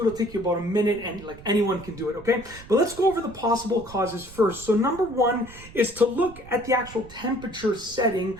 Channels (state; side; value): noise; right; rumble, 18 dB below the sound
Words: take you about a minute, and like anyone can do it, okay? But let's go over the possible causes first. So number 1 is to look at the actual temperature setting